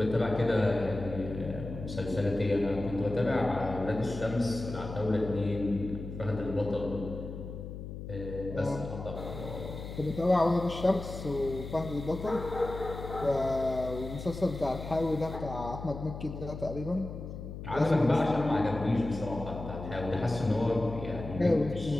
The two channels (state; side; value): noise; left; hum, 9 dB below the sound